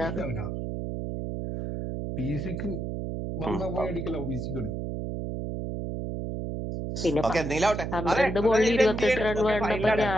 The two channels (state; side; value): noise; right; hum, 4 dB below the sound